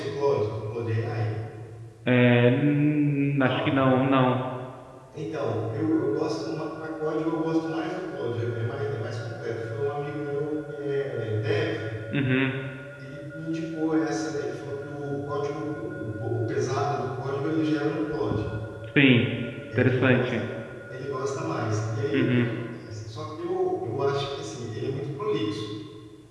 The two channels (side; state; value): both; identical; correlation 1.00